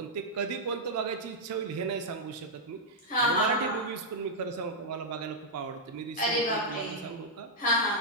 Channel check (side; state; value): both; normal; correlation -0.06